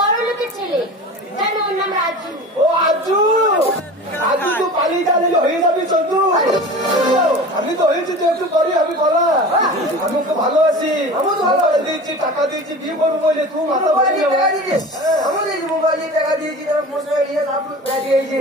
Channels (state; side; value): normal; both; correlation 0.35